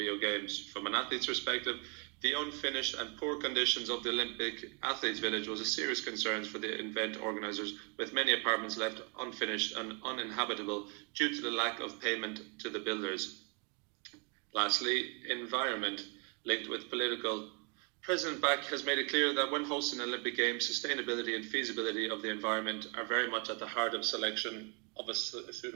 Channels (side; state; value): left; quieter; 34.5 dB